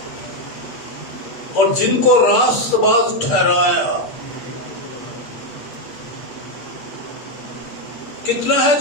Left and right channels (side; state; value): right; late; 8.1 ms